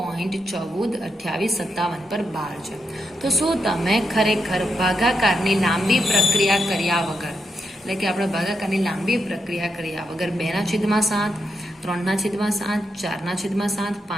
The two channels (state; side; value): normal; both; correlation 0.83